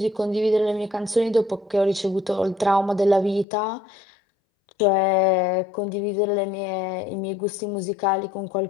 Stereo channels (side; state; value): right; drops out; at 3.5 s